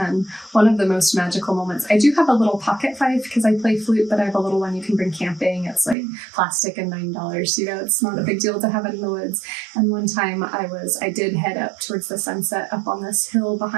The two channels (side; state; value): left; drops out; at 6.0 s